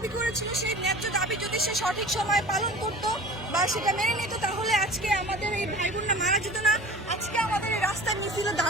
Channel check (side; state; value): both; normal; correlation 0.40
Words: করেছিল, সেই ন্যায্য দাবি যদি সে সঠিক সময় পালন করতো বা সেটা মেনে নিত তাহলে আজকে আমাদের এই ভাই বোনরা মারা যেত না, আজকে আমাদের এই রাস্তায় মিছিলে